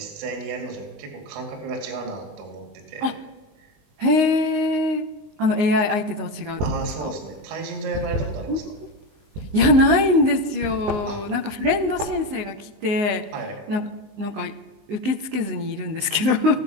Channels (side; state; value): left; late; 19 ms